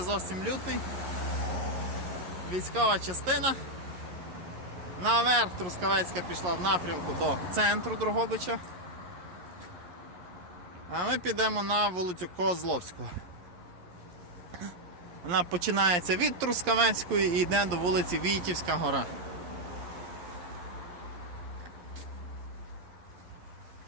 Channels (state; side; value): late; left; 11 ms